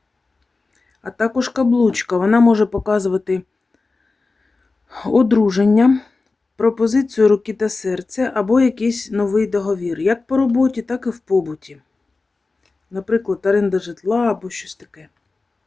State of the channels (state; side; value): quieter; right; 3.8 dB